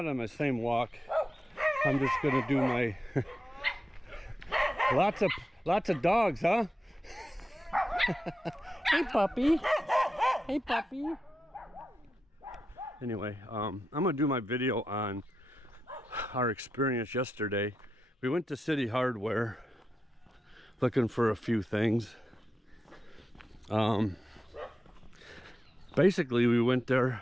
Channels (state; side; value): normal; both; correlation 0.89